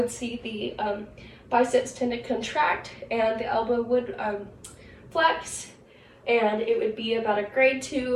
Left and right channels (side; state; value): both; identical; correlation 1.00